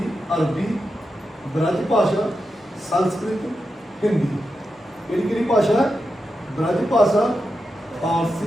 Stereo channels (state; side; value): normal; both; correlation 0.88